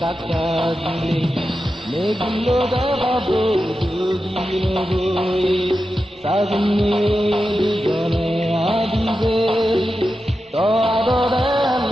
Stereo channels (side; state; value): both; normal; correlation 0.91